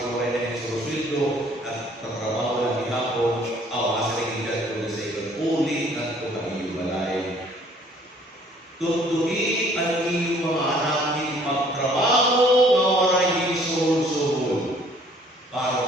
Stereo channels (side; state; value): both; normal; correlation 0.58